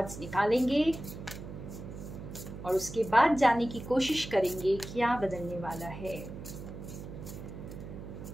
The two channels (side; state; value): right; noise; hum, 11 dB below the sound